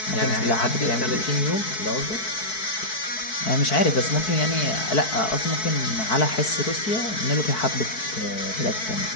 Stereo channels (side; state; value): right; late; 4.6 ms